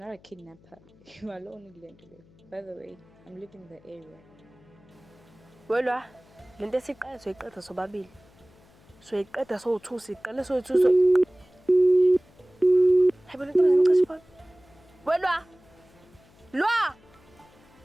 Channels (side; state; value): left; noise; hum, 28 dB below the sound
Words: a kidnapper. You are alone in London. By the way, I'm leaving the area. Welwa, lento esiqala soyiqeda sobabili. Soyiqeda sowu2 siqala soyithu so. Hayibo lento ngicashe phone. Welwa. Lwa.